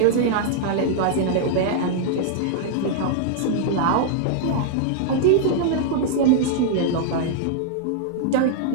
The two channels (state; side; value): different; both; correlation -0.01